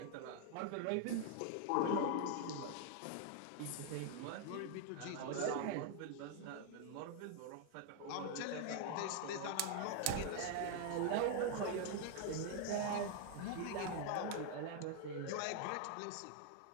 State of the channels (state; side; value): different; both; correlation 0.00